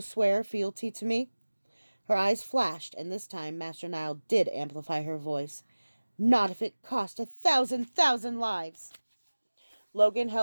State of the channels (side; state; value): both; inverted; correlation -1.00